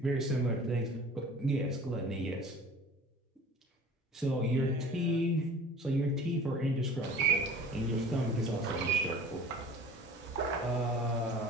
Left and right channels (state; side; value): normal; both; correlation 0.44